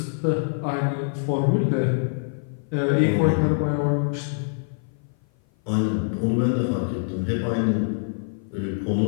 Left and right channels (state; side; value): silent; right; 56 dB below the other